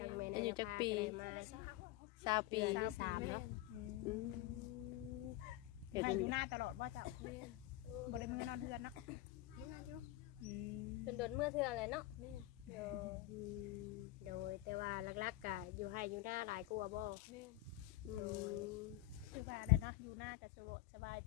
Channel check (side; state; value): right; quieter; 16.6 dB